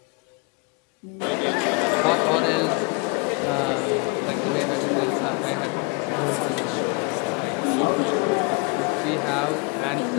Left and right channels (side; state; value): right; quieter; 33.2 dB